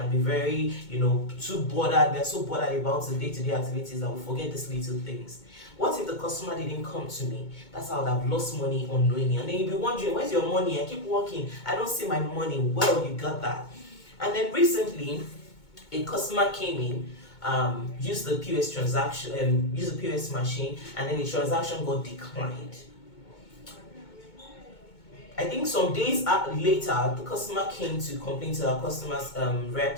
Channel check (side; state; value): right; late; 2.2 ms